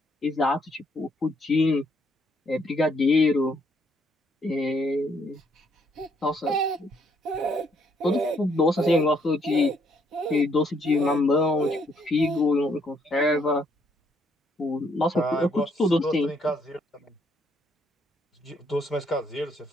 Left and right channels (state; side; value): normal; both; correlation 0.70